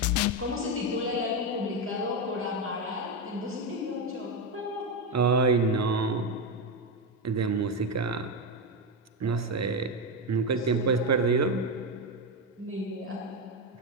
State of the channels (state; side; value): normal; both; correlation 0.10